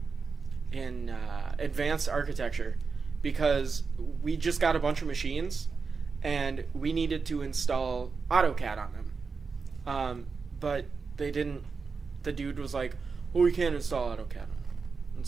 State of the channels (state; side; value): quieter; left; 4.9 dB